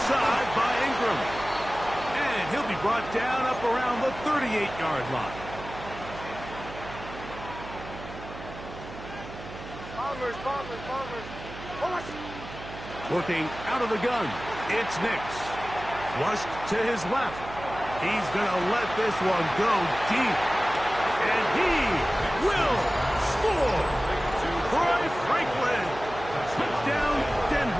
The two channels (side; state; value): right; noise; hum, 13 dB below the sound